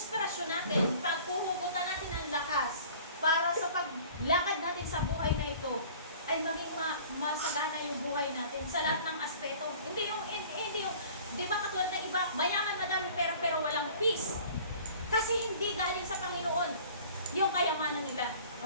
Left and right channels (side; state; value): both; inverted; correlation -0.48